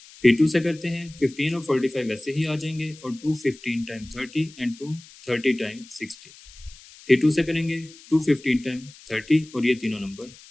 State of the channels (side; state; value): left; noise; hiss, 21 dB below the sound